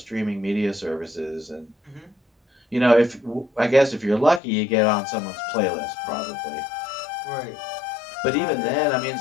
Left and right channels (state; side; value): drops out; right; at 4.4 s